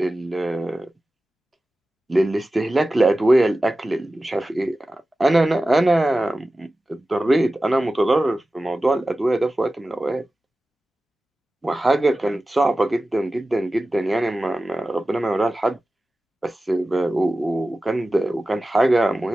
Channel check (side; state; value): both; normal; correlation 0.95